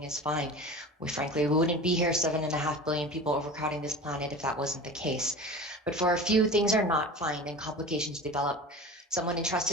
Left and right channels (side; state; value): both; normal; correlation 0.35